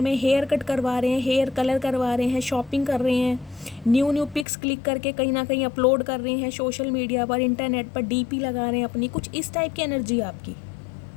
में, हेयर कट करवा रहे हैं, हेयर कलर करवा रहे हैं, शॉपिंग कर रहे हैं, न्यू पिक्स क्लिक करके कहीं ना कहीं अपलोड कर रहे हैं सोशल मीडिया पर, इंटरनेट पर, डीपी लगा रहे हैं अपनी। कुछ इस टाइप की एनर्जी है आपकी।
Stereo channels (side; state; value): right; drops out; at 4.5 s